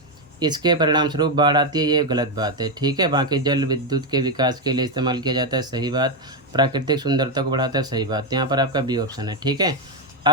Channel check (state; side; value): normal; both; correlation 0.06